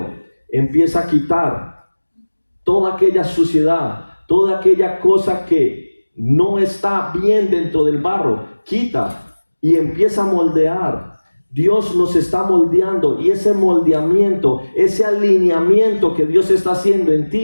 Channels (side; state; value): both; inverted; correlation -1.00